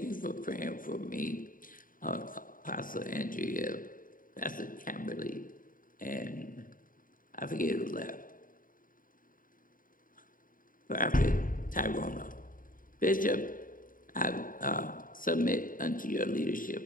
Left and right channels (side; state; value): right; late; 0.40 ms